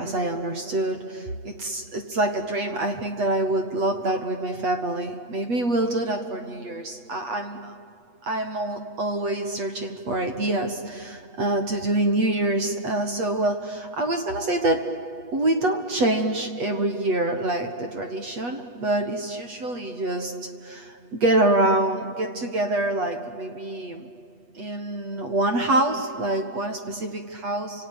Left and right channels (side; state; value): left; late; 8.3 ms